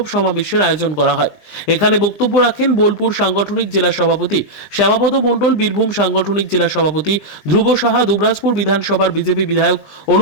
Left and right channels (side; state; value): right; late; 20 ms